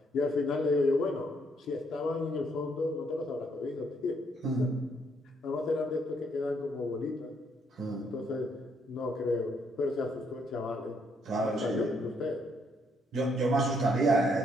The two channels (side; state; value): both; normal; correlation 0.71